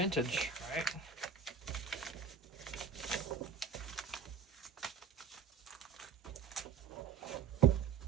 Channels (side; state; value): left; quieter; 6.3 dB